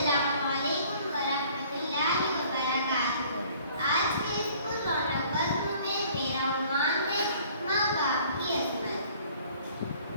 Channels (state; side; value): inverted; both; correlation -0.55